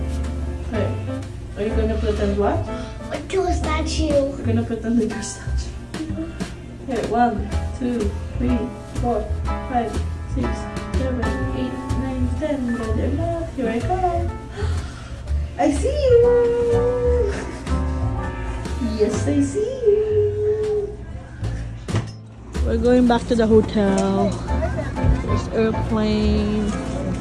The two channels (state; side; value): identical; both; correlation 1.00